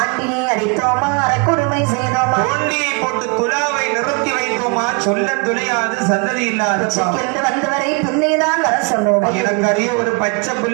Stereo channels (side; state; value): left; quieter; 32.4 dB